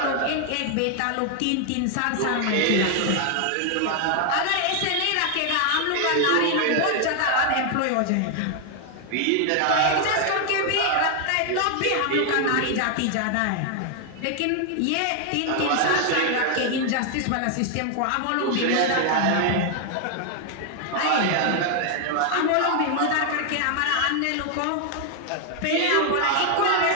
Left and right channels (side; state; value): both; different; correlation 0.00